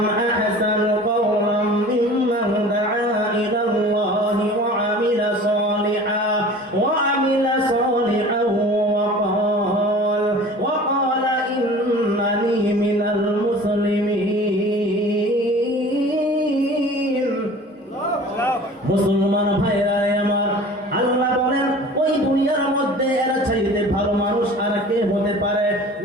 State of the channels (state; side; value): normal; both; correlation 0.43